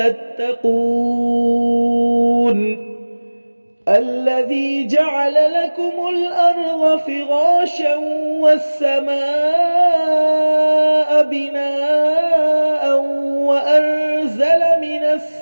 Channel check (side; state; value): both; inverted; correlation -1.00